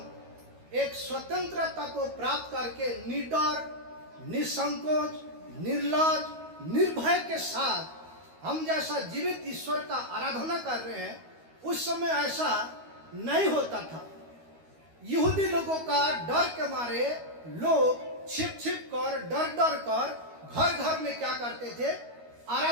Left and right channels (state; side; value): late; left; 13 ms